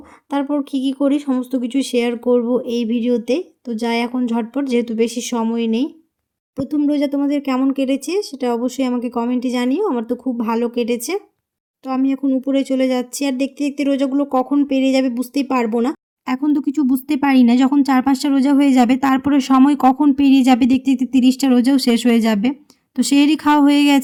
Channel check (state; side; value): identical; both; correlation 1.00